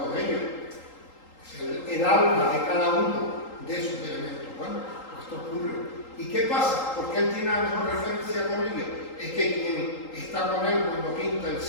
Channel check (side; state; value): right; late; 3.8 ms